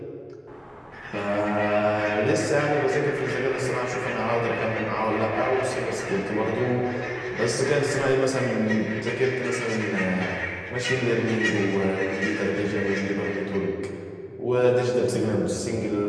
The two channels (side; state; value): both; identical; correlation 1.00